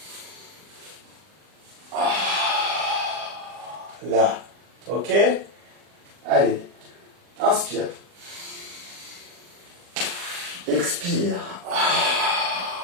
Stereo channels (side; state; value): left; late; 40 ms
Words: Là, ok? Allez, inspire. Expire.